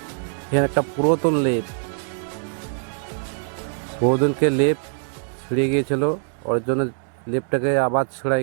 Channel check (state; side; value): silent; left; 60 dB below the other